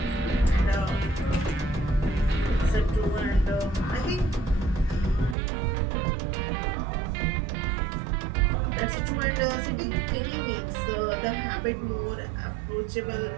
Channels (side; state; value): left; drops out; at 5.4 s